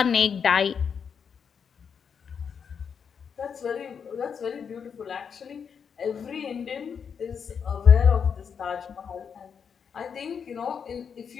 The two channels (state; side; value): quieter; right; 6.8 dB